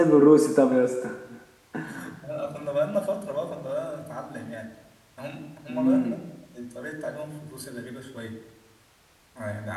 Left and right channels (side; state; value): both; identical; correlation 1.00